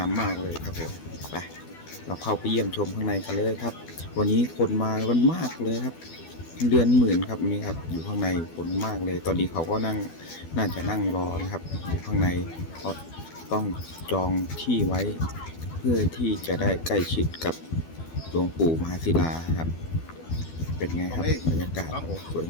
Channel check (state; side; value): late; right; 12 ms